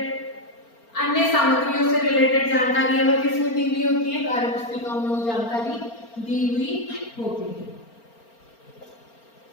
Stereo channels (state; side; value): late; right; 4.4 ms